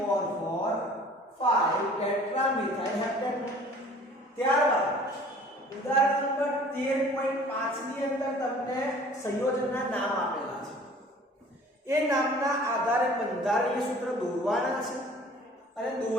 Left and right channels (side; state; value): both; normal; correlation 0.49